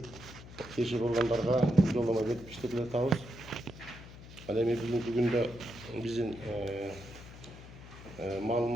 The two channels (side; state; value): left; noise; hum, 16 dB below the sound